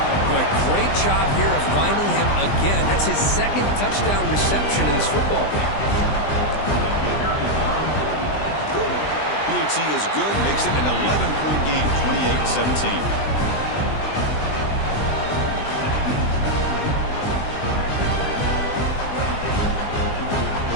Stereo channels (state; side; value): late; right; 20 ms